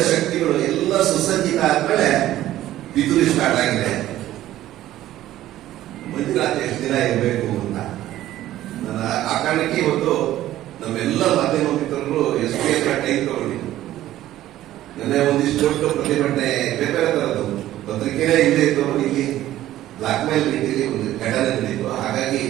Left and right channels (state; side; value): quieter; left; 14.0 dB